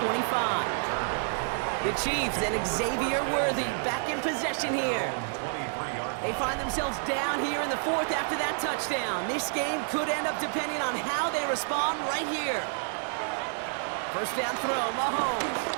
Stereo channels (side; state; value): left; silent; 58 dB below the other